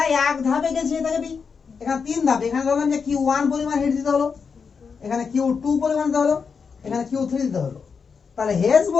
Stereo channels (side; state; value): right; quieter; 5.7 dB